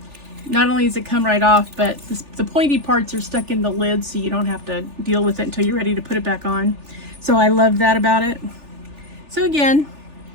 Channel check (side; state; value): left; late; 3.4 ms